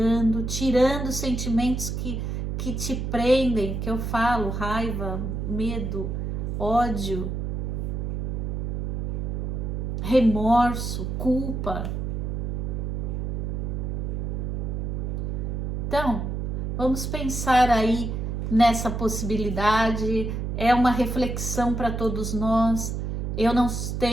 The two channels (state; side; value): noise; right; hum, 2 dB below the sound